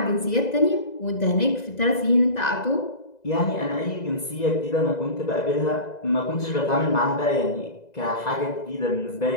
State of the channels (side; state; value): right; late; 2.0 ms